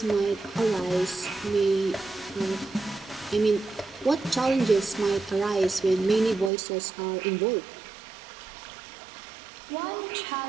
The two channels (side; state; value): left; drops out; at 6.5 s